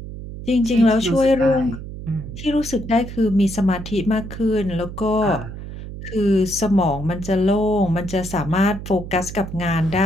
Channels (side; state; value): right; noise; hum, 10 dB below the sound